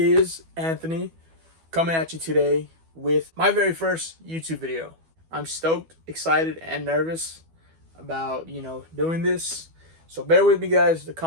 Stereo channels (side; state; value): left; late; 12 ms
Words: Anthony coming at you today with my very first YouTube video. I'm stoked, excited, and nervous about, doing this. So bear with me, guys. The